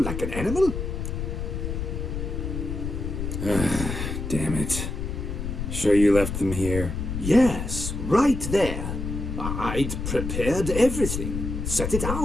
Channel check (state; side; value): noise; left; rumble, 4 dB below the sound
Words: like an animal? Damn it. Sure you left them here? Yes, right there. I'd prepared everything, set it